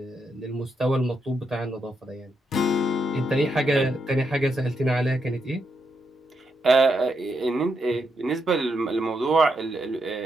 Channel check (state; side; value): normal; both; correlation 0.81